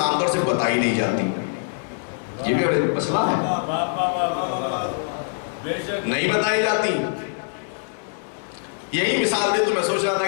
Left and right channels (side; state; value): right; silent; digital silence